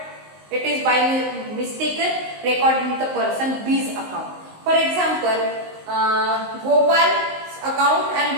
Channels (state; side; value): late; left; 19 ms